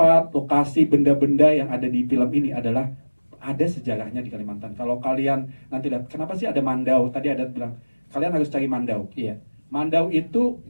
lokasi, benda-benda yang ada di film ini adalah ada sejarahnya di Kalimantan. Kalau kalian nanti lihat, kenapa sih ada Mandau? Tadi ada bilang, kalian harus cari Mandau. Iya. Mandau itu,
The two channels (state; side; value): inverted; both; correlation -1.00